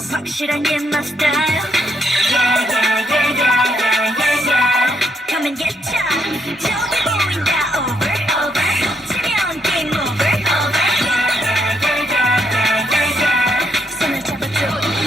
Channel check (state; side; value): normal; both; correlation 0.75